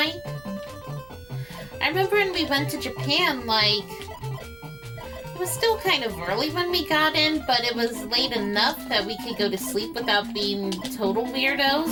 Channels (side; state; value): right; noise; hum, 23 dB below the sound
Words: I remember when we went to Japan, like, it was still kind of early when we got in, but it was late enough that we could go to sleep without being total